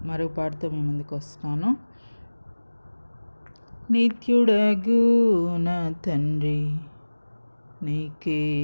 మరో పాటతో మీ ముందుకు వస్తున్నాను. నిత్యుడగు నా తండ్రి నీకే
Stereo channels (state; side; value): inverted; both; correlation -1.00